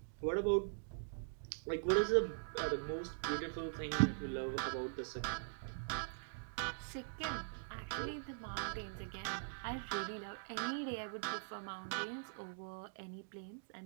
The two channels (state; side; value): silent; left; digital silence